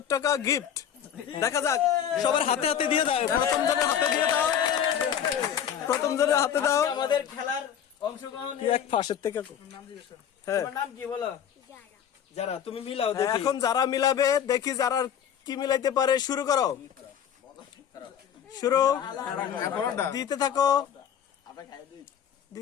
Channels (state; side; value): quieter; right; 9.0 dB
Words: টাকা গিফট। দেখা যাক, সবার হাতে হাতে দিয়ে দাও। প্রথম জনের হাতে দিয়ে দাও, প্রথম জনের হাতে দাও। আজকে আমাদের খেলার অংশগ্রহণ। কি এক ফাঁসের থেকে হ্যাঁ, তোমার নাম কি বলো? যারা, তুমি মিলাও দেখি। এখন যারা মিলাবে দেখি যারা কি মিলাইতে পারে। শুরু করো, শুরু দিতে থাকো,